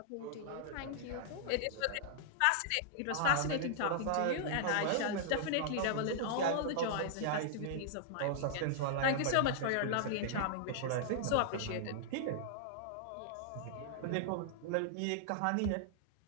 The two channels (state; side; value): different; both; correlation -0.01